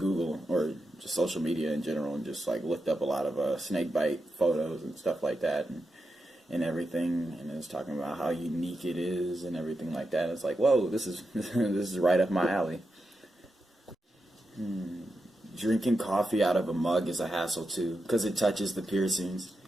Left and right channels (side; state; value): both; normal; correlation 0.88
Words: or just social media in general and just like looked up a lot of snake bite photos and stuff like that, and everything, and it was talking about how unique it is and everything like that. It's like, whoa, this is this is right up my alley. Drinking coffee out of a mug is a hassle too, because it touches the piercings.